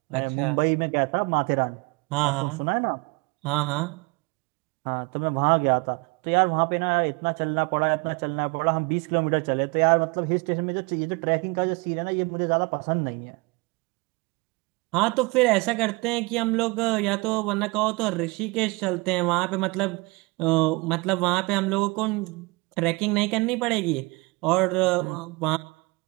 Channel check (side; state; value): left; quieter; 26.6 dB